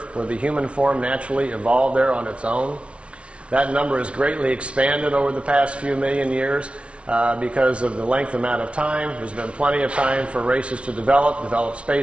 where the human form naturally evolved there on its own. That number has greatly expanded over the past few million years because of the length amount of time. There's been plenty of time for races to develop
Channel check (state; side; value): late; left; 0.060 ms